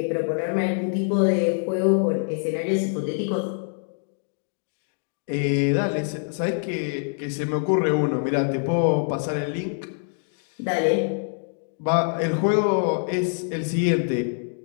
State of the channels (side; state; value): right; silent; digital silence